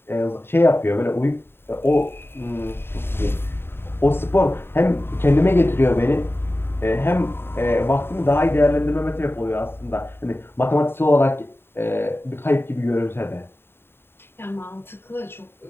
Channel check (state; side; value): late; right; 0.11 ms